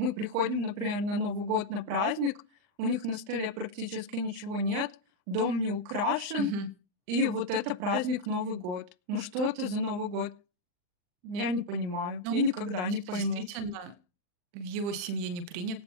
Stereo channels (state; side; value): late; left; 39 ms